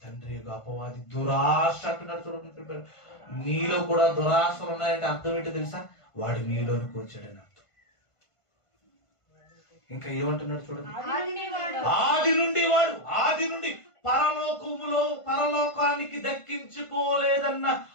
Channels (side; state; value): right; late; 1.5 ms